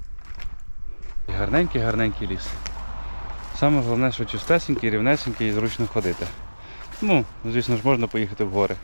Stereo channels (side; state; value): both; inverted; correlation -1.00